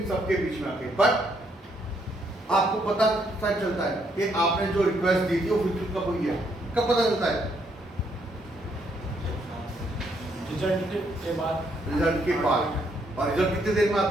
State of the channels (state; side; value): normal; both; correlation 0.72